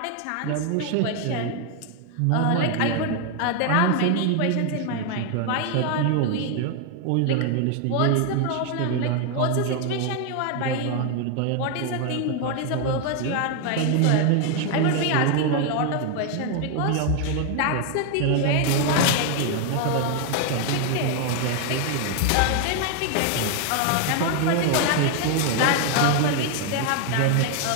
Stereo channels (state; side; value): different; both; correlation 0.00